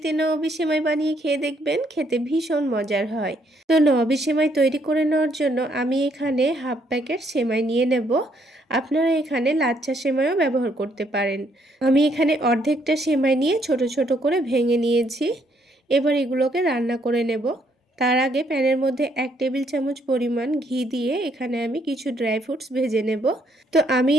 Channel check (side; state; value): both; normal; correlation 0.70